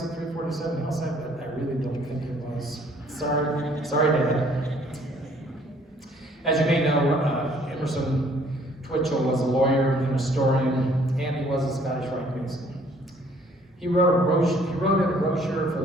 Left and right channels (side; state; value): both; normal; correlation 0.60